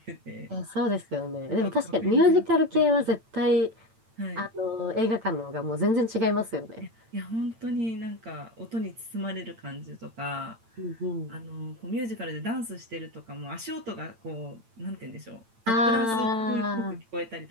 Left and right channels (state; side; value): late; left; 8.9 ms